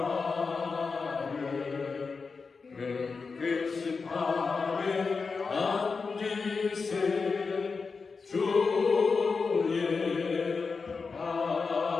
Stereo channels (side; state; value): right; quieter; 4.7 dB